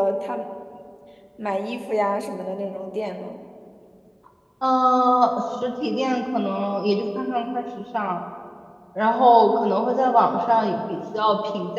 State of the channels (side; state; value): both; identical; correlation 1.00